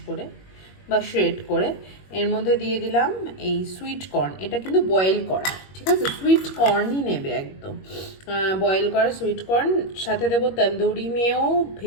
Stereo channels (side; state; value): right; late; 21 ms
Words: করে বা শ্রেড করে। এর মধ্যে দিয়ে দিলাম এই সুইট কর্ন, এটা কিন্তু বয়েল করা, ঠিক আছে, সুইট কর্নই নেবে একদম বয়েল করা সুইট কর্ন। সাথে দেবো tandoori mayo,